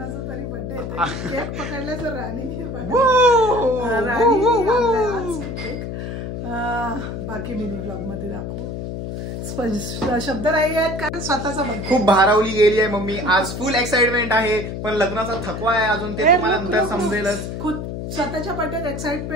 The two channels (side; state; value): left; noise; hum, 6 dB below the sound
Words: तरी बर्थडे येते. केक पकडला तर राणीने केक. बाकी मी व्लॉग मध्ये दाखवू. शब्द नाही आहेत कारण स्वतःचा बर्थडे. खूप भारावली गेली आहे मम्मी. आज फुल एक्साइटमेंट आहे पण लग्नाचा थकवा आहे अजून. ते तुम्हाला नंतर समजेलच. स्वतःच्या बर्थडेत